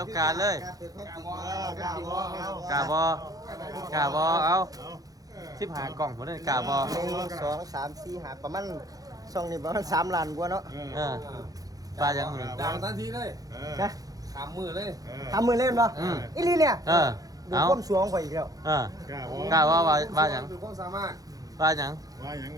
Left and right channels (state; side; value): late; left; 0.18 ms